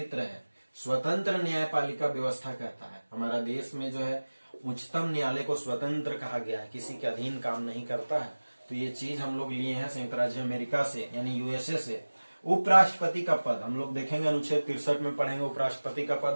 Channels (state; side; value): inverted; both; correlation -1.00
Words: है स्वतंत्र न्यायपालिका व्यवस्था कहता है। हमारा देश में जो है उच्चतम न्यायालय को स्वतंत्र कहा गया है, किसी के अधीन काम नहीं करता है। तो ये चीज हम लोग लिए हैं संयुक्त राज्य अमेरिका से, यानी यूएसए से। उपराष्ट्रपति का पद हम लोग देखेंगे, अनुच्छेद 63 में पढ़ेंगे उपराष्ट्रपति का